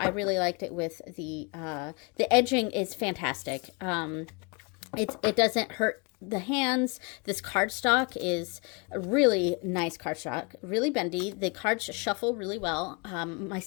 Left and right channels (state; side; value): quieter; right; 31.6 dB